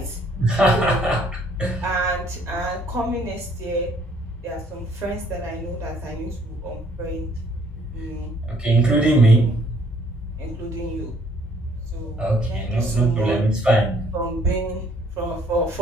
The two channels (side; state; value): both; normal; correlation 0.63